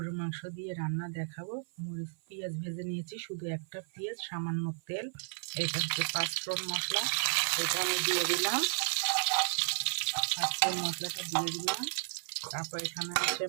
মাংস দিয়ে রান্না দেখাবো। মরিচ পেঁয়াজ ভেজে নিয়েছি, শুধু একটা পেঁয়াজ, সামান্য তেল। এটা হচ্ছে পাঁচফোড়ন মশলা, এটা আমি দিয়ে দিলাম। পাঁচফোড়ন মশলাটা দিয়ে দিলাম। তারপর এখানে আছে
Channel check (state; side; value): silent; left; 55 dB below the other